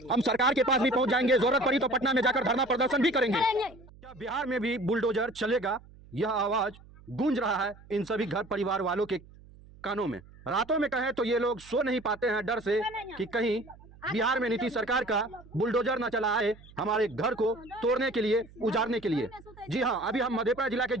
हम सरकार के पास भी पहुंच जाएंगे, जरूरत पड़ी तो पटना में जाकर धरना प्रदर्शन भी करेंगे। क्या बिहार में भी बुलडोजर चलेगा? यह आवाज गूंज रहा है इन सभी घर परिवार वालों के कानों में। रातों में कहें तो ये लोग सो नहीं पाते हैं डर से कि कहीं बिहार में नीतीश सरकार का बुलडोजर न चला आए हमारे घर को तोड़ने के लिए, उजाड़ने के लिए। जी हाँ, अभी हम मधेपुरा जिला के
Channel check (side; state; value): right; noise; hum, 22 dB below the sound